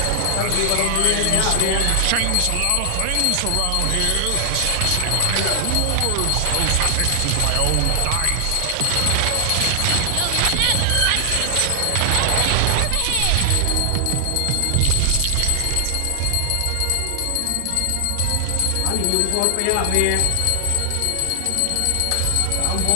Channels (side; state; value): both; different; correlation 0.00